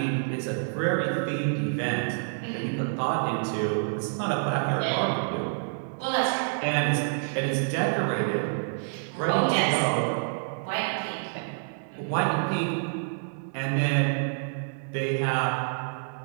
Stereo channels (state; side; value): silent; left; digital silence